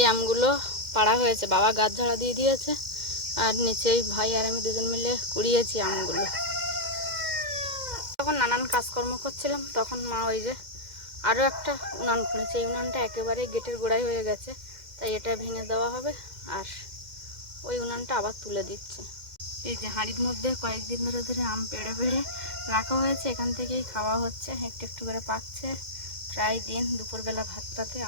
আমগুলো পাড়া হয়েছে, বাবা গাছ ঝাড়া দিয়ে দিয়েছে আর নিচেই ভাই আর আমি দুজন মিলে কুড়িয়েছি আমগুলো। তখন নানান কাজকর্ম করছিলাম তখন মা ওই যে আরও একটা উনান খুলেছে, এই উনানটা একেবারে গেটের গোড়ায় হয়ে গেছে, তাই এটা ভেঙে দেওয়া হবে আর ওই উনানটা আবার তুলে দিচ্ছে। এই যে হাঁড়ির মধ্যে কয়েকদিন ধরে ধরে আম পেড়ে পেড়ে রাখা হয়েছে, এখান থেকেই খাওয়া হচ্ছে, একটু একটু করে পাকছে। প্রায় দিন দুপুরবেলা ভাতটাতে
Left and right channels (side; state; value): left; late; 2.1 ms